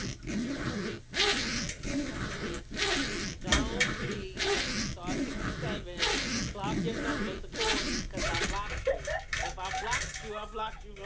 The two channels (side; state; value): both; identical; correlation 1.00